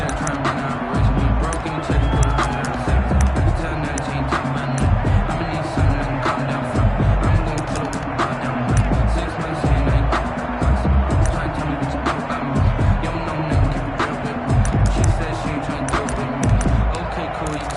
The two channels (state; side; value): identical; both; correlation 1.00